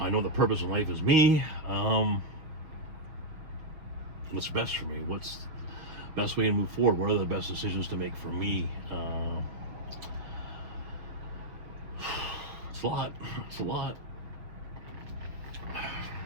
know the purpose in life is me. What's best for me? What's the best way to move forward? What are the best decisions to make for me? It's a lot. It's a lot.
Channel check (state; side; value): late; left; 6.6 ms